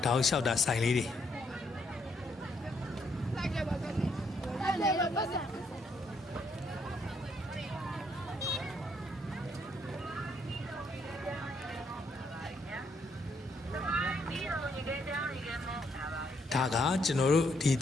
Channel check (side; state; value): both; normal; correlation 0.73